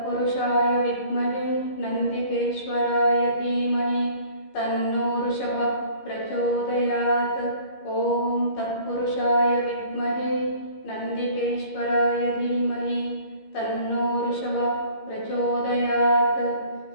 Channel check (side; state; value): right; late; 15 ms